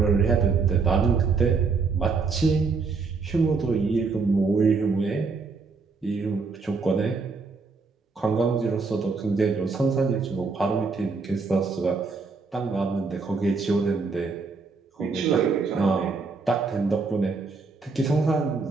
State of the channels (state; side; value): quieter; left; 4.5 dB